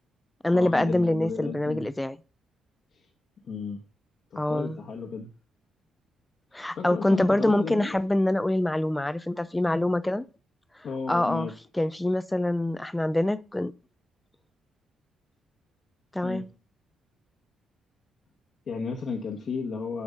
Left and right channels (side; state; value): both; normal; correlation 0.97